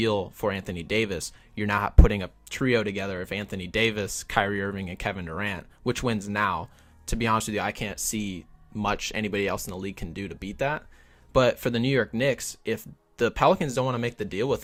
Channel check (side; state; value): both; identical; correlation 1.00